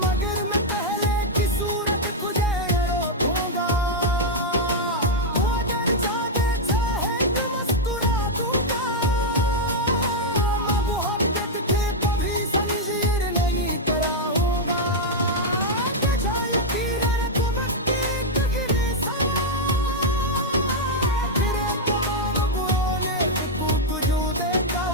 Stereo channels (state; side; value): normal; both; correlation -0.02